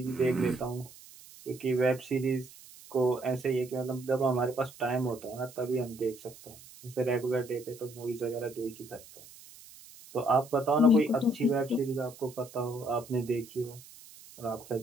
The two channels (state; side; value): noise; right; hiss, 20 dB below the sound